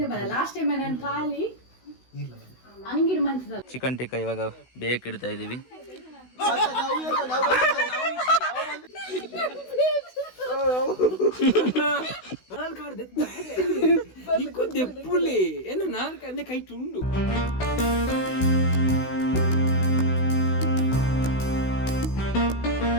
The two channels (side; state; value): right; late; 16 ms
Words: ಬರ ಲಾಸ್ಟ್ ಟೈಮ್ ನಾನು ಖಾಲಿ ಅಂಗಿಡ್ ಮಂಚದ ಚಿಕನ್ ಟಿಕ್ಕ ಇವಾಗ ಬೇಕಿಡ್ತಾ ಇದೀವಿ.